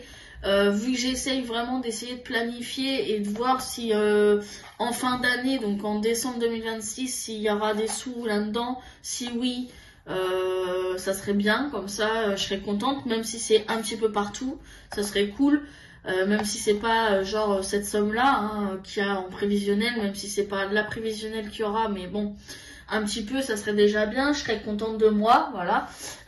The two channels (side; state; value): both; identical; correlation 1.00